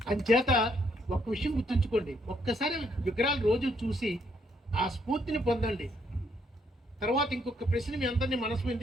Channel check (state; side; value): normal; both; correlation 0.72